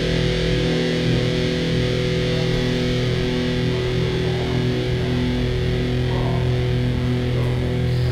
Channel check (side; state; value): both; identical; correlation 1.00